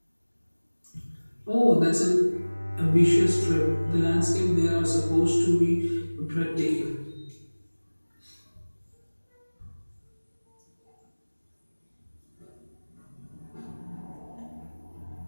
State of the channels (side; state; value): both; inverted; correlation -1.00